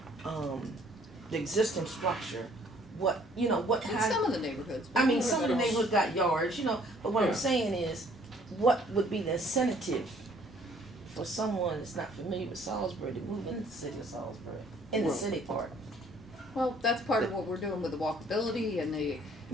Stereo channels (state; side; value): normal; both; correlation 0.59